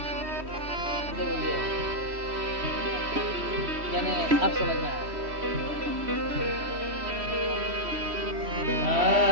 यानी अब समझ में आया।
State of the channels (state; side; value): late; left; 3.1 ms